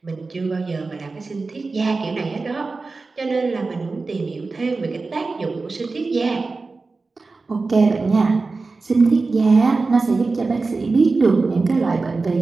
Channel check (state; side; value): quieter; left; 3.9 dB